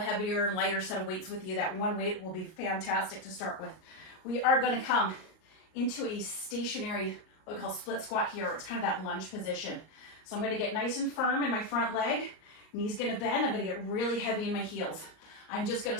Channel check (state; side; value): late; right; 38 ms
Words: heavier and lighter set of weights with you, that one weight will be fantastic to start with. We are gonna come into a stationary, what we call split squat here. It's kind of that lunge position. So I'm gonna get nice and firm in my front leg. Knees gonna bend. I'm gonna get really heavy in my heels. I'm just gonna